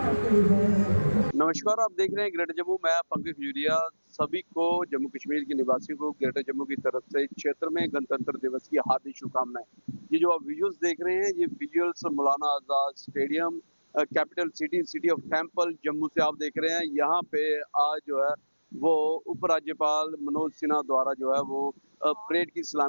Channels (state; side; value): inverted; both; correlation -1.00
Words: नमस्कार, आप देख रहे हैं ग्रेटर जम्मू। मैं पंकज खजूरिया। सभी को, जम्मू कश्मीर के निवासियों को ग्रेटर जम्मू की तरफ से क्षेत्र में गणतंत्र दिवस की हार्दिक शुभकामनाएं। ये जो आप विजुअल्स देख रहे हैं, ये visuals Maulana Azad stadium, capital city of temple Jammu से आप देख रहे हैं। यहाँ पे आज जो है वो उपराज्यपाल मनोज सिन्हा द्वारा जो है वो परेड की